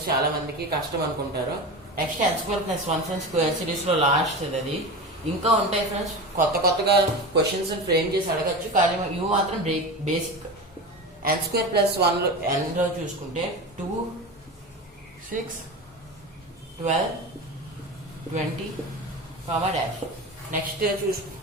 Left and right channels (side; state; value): both; normal; correlation 0.27